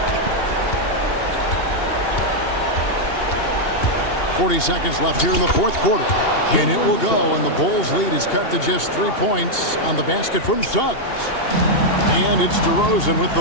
40 seconds left here in the fourth quarter. And it will go, and the Bulls' lead is cut to just 3 points on the basket from Suggs. And it's DeRozan with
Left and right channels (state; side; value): late; right; 2.8 ms